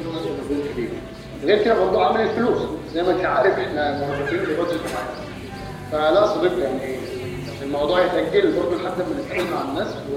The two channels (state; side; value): identical; both; correlation 1.00